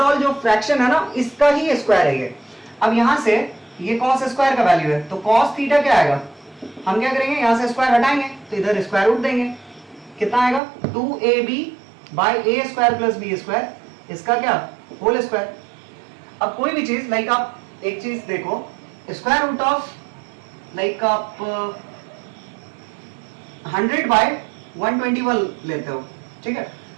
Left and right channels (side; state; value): left; drops out; at 10.6 s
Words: जो फ्रैक्शन है ना इसका ही स्क्वायर है ये। अब यहां से ये cos स्क्वायर का वैल्यू है, तो cos थीटा क्या आएगा, हम क्या करेंगे यहां से स्क्वायर हटाएंगे तो इधर स्क्वायर रूट देंगे, कितना आएगा 2ab by a square plus b square, इसका क्या होल स्क्वायर। अब कोई भी चीज लाइक आप एक चीज देखो, स्क्वायर रूट ऑफ लाइक आप 100 बाय 121 लेते हो, ठीक है,